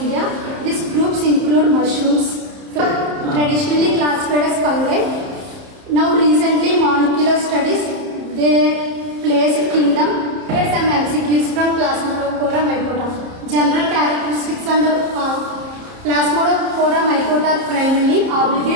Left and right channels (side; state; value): left; late; 30 ms